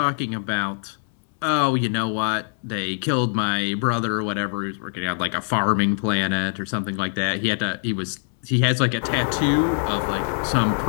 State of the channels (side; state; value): right; silent; 63 dB below the other